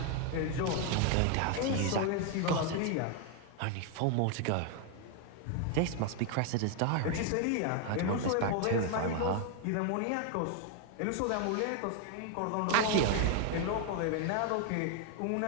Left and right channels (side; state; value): both; different; correlation 0.01